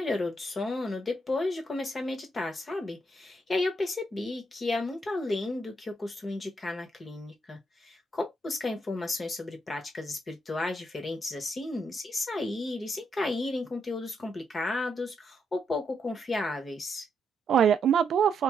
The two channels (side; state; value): both; normal; correlation 0.78